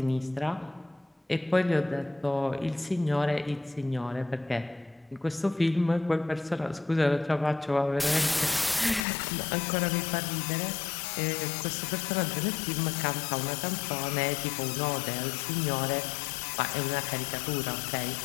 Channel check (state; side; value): drops out; right; at 9.1 s